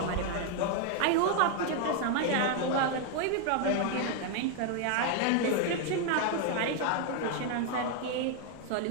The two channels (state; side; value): different; both; correlation 0.00